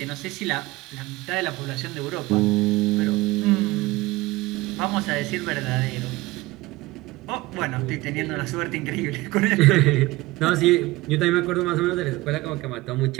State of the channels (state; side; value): quieter; left; 20.1 dB